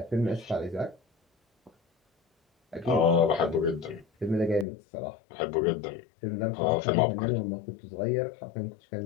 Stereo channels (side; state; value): right; drops out; at 4.7 s